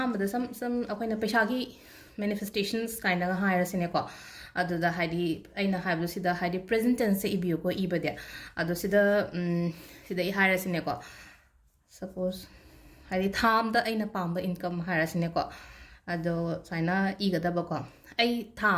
some akoina pesha gi manifestations kind of higher sineko ado da hadi aina hablo sida hadi present tense ibiyo ko ibade ado sida sida I higher sineko suppose hadi tham da aina pamba income higher sineko ado saina igada bako ai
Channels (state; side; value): identical; both; correlation 1.00